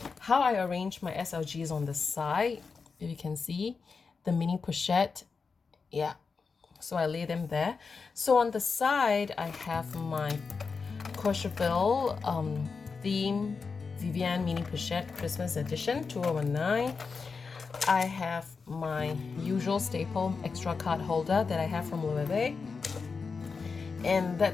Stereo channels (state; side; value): quieter; right; 5.0 dB